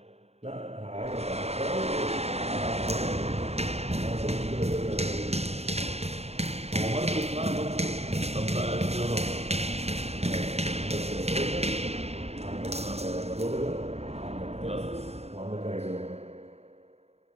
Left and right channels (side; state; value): left; late; 0.30 ms